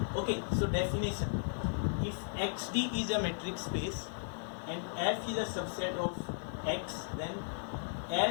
Okay, so definition. If XD is a metric space and F is a subset of X, then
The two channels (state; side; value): silent; right; 54 dB below the other